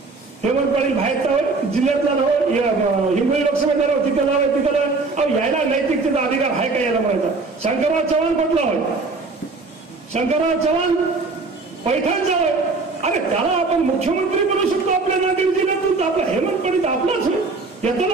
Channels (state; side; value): quieter; left; 3.9 dB